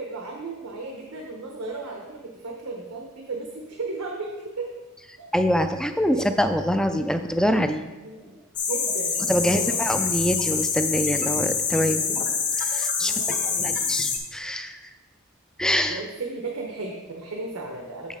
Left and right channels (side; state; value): both; normal; correlation 0.53